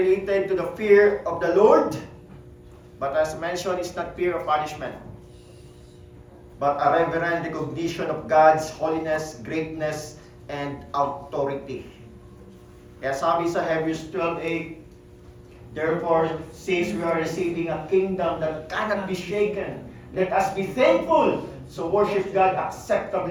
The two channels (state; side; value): identical; both; correlation 1.00